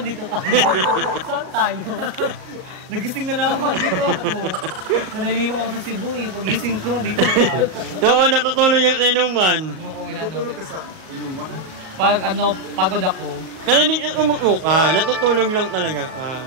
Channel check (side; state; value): left; late; 38 ms